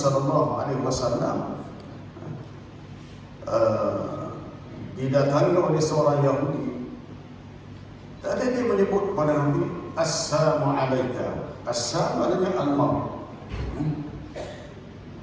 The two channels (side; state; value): both; identical; correlation 1.00